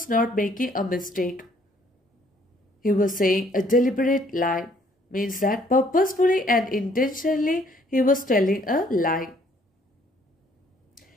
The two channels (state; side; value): normal; both; correlation 0.63